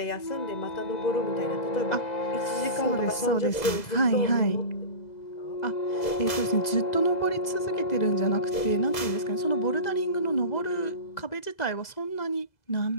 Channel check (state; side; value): late; right; 2.0 ms